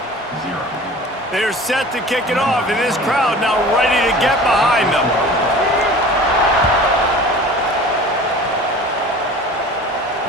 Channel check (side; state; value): both; normal; correlation 0.41